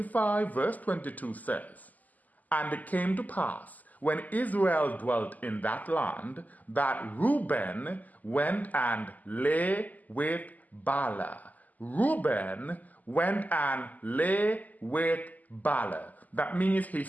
verse 22 says, "And it came to pass, when Israel dwelt in that land, that Reuben went and lay with Bala." Reuben went and lay with Bala. That means he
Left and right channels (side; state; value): right; late; 0.080 ms